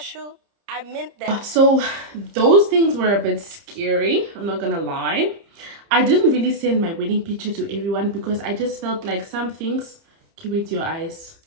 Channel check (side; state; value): left; late; 30 ms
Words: I meant that. So those things were a bit scary. I'm not going to lie. I didn't really send my wedding picture to everyone because I just felt like some things, keep it to your eyes,